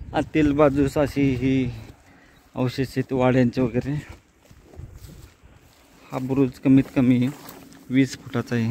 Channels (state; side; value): identical; both; correlation 1.00